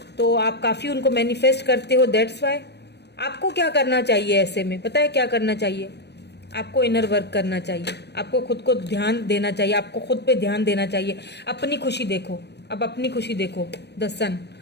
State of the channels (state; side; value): late; right; 0.49 ms